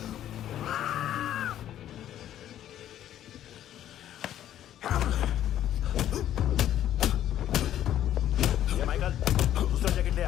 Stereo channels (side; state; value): right; quieter; 11.6 dB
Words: ये माइकल, दूसरा जैकेट ले